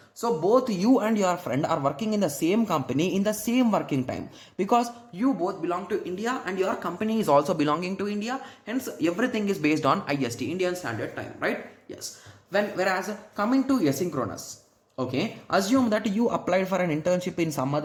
So both you and your friend are working in the same company in the same working time, because you both belong to India and your company is also belonging to India, hence everything is based on IST, Indian Standard Time, right? Yes. Whereas coming to asynchronous, okay, assume that you applied for an internship in some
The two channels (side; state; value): both; identical; correlation 1.00